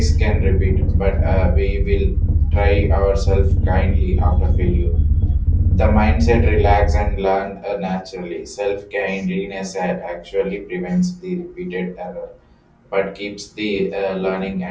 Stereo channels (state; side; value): identical; both; correlation 1.00